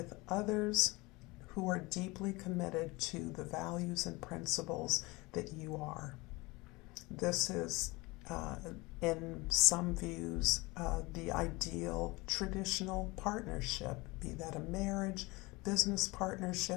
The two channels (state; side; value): quieter; right; 23.5 dB